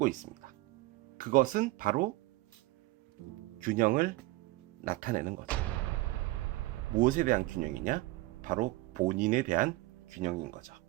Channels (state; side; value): quieter; left; 19.1 dB